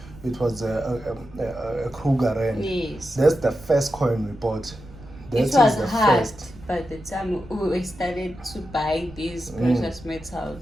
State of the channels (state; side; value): noise; right; rumble, 18 dB below the sound